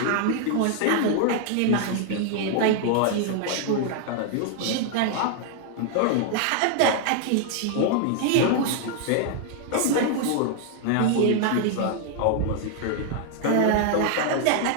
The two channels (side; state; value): both; different; correlation 0.00